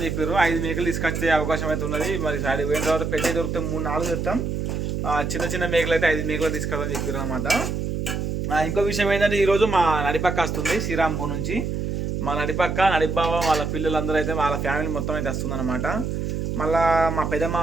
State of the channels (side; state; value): right; noise; hum, 2 dB below the sound